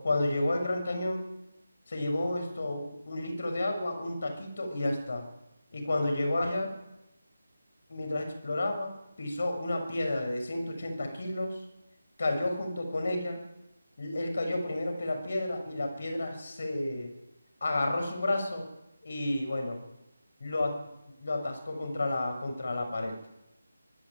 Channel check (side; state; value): both; inverted; correlation -0.93